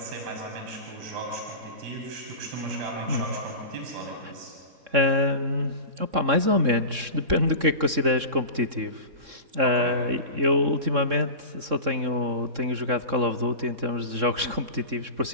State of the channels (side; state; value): left; late; 3.6 ms